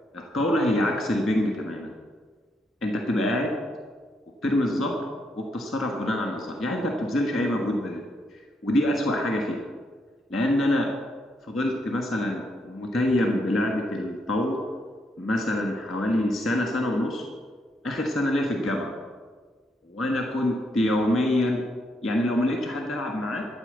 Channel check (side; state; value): both; normal; correlation 0.77